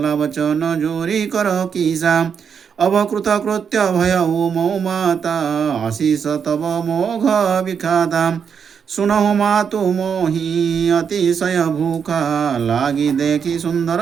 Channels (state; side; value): quieter; left; 6.9 dB